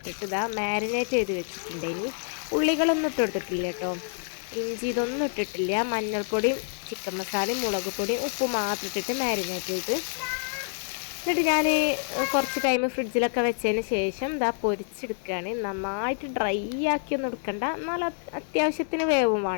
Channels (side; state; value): right; silent; 60 dB below the other